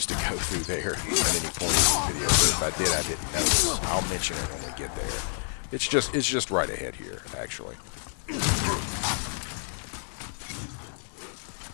to go through there at any point in the video, but if I did, I didn't notice. I'll mention it when we get there. It's just right ahead here, actually.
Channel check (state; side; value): silent; right; digital silence